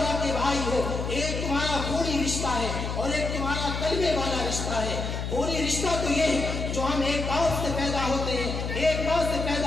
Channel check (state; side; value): noise; left; hum, 4 dB below the sound